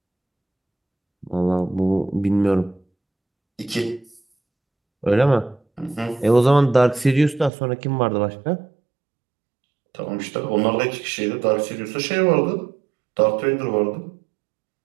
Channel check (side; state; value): left; drops out; at 7.5 s